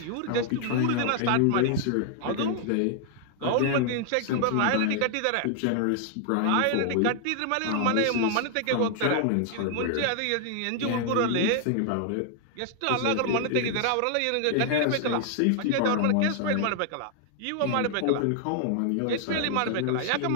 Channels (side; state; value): both; different; correlation 0.00